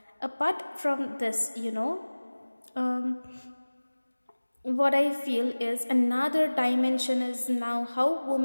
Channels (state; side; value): inverted; both; correlation -1.00